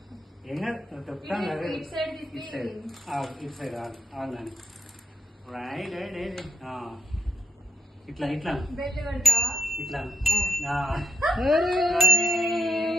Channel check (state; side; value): normal; both; correlation 0.82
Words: ఏం కాదు, తొక్కుతాను కదా. ఇటు సైడ్ తిప్పి ఇటు సైడ్ ఇటు సైడ్ ఆగాని. Right right right. ఇట్లా ఇట్లా బెల్ట్ పెడతా ఇట్లా.